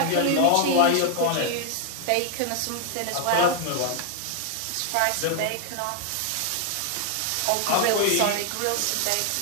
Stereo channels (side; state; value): both; different; correlation 0.00